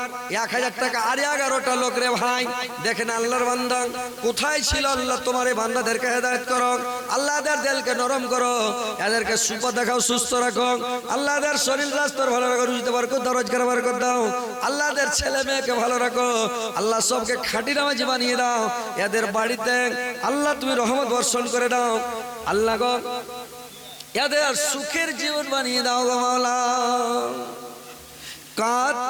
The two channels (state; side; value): identical; both; correlation 1.00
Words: 1000 টাকা। আর 11টা লোক রে ভাই, দেখেন আল্লাহর বান্দা কোথায় ছিল। আল্লাহ তোমার এই বান্দাদেরকে হেদায়েত করো, আল্লাহ এদের দিলকে নরম করো, এদেরকে সুখ দেখাও, সুস্থ রাখো। আল্লাহ এদের শরীর স্বাস্থ্য ভালো রাখো, রুজিতে বরকত দাও, রোজগার বরকত দাও। আল্লাহ এদের ছেলে মেয়েকে ভালো রাখো, আল্লাহ সবকে খাঁটি নামাজি বানিয়ে দাও। এদের বাড়িতে আল্লাহ তুমি রহমত বর্ষণ করে দাও। আল্লাহ গো এদের সুখের জীবন বানিয়ে দাও গো মাওলা।